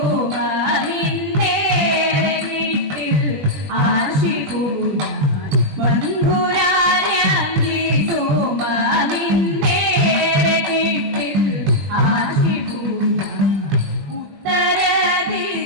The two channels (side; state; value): left; late; 20 ms